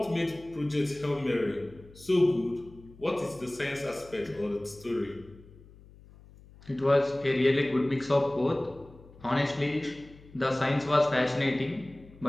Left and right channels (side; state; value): left; noise; hum, 22 dB below the sound